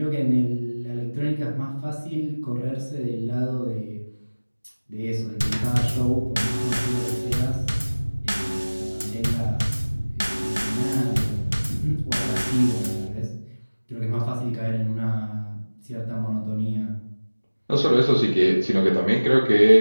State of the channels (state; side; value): inverted; both; correlation -1.00